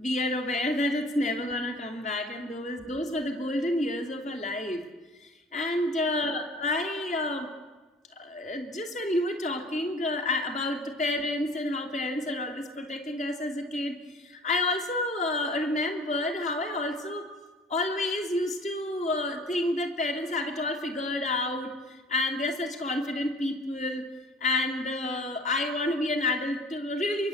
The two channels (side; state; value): both; normal; correlation 0.48